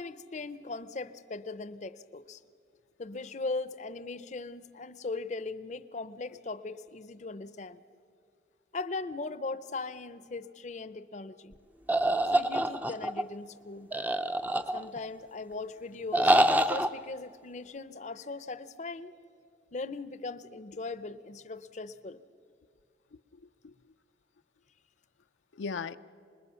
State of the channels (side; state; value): both; normal; correlation 0.63